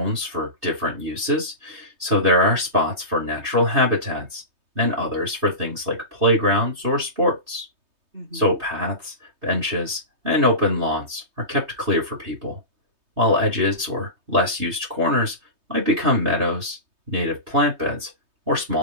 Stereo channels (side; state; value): left; late; 3.2 ms